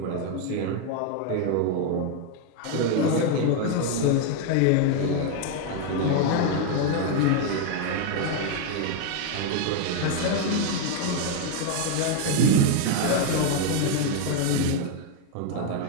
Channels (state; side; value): different; both; correlation 0.01